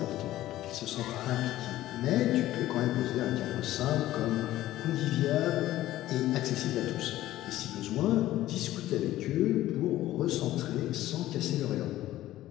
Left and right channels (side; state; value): right; quieter; 14.8 dB